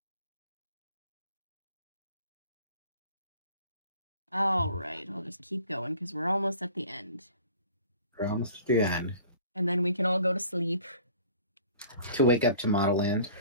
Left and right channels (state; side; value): inverted; both; correlation -0.49